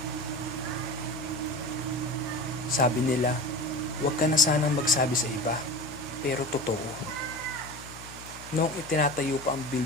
Sabi nila, "Huwag ka na sanang magsabi sa iba." Pero totoo. Noong itinatayo pa ang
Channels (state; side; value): noise; left; hum, 17 dB below the sound